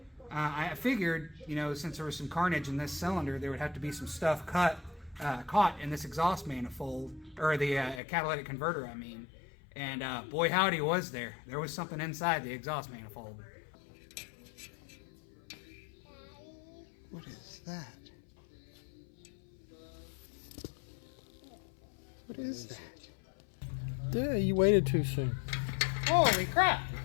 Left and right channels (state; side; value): drops out; right; at 8.0 s